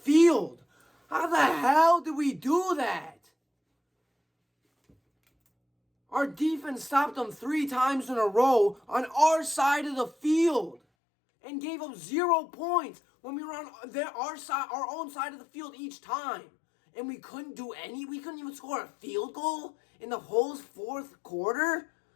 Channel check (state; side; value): drops out; right; at 10.8 s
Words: How the hell did we do that? Our defense stopped them 3 times in a row on our side of the field. And gave up 0 points when we were on our own side of the field each time. And we couldn't even score a field goal in the whole fourth quarter?